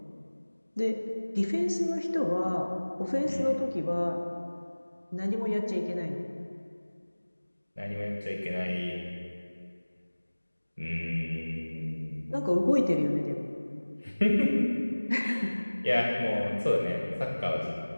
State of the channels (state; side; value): inverted; both; correlation -1.00